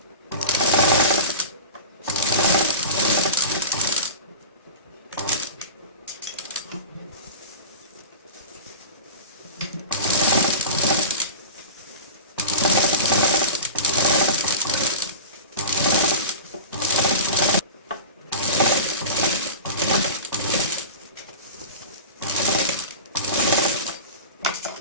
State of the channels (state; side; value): inverted; both; correlation -0.31